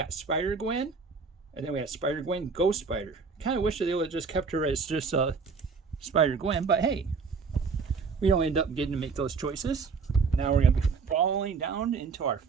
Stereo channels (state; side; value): quieter; left; 5.1 dB